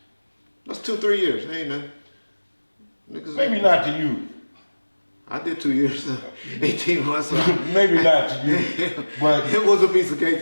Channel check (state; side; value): inverted; both; correlation -1.00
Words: That's 2-3 years. Ain't nothing. Niggas Maybe not to you. I did 2 years, 18 months. Maybe not to you. But It was a piece of cake,